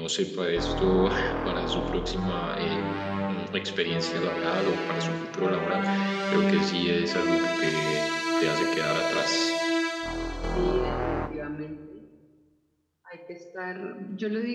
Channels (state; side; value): identical; both; correlation 1.00